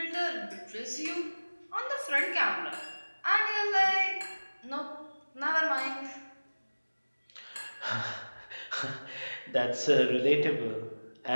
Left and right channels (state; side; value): inverted; both; correlation -1.00